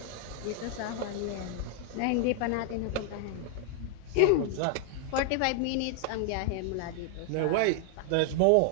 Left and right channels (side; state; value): both; different; correlation 0.00